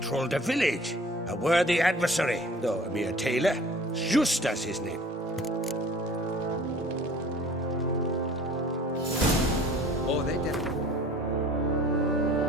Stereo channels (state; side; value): normal; both; correlation 0.48